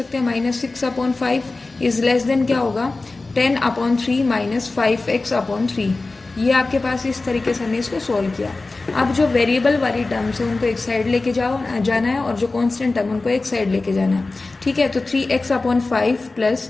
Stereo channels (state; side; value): quieter; right; 3.4 dB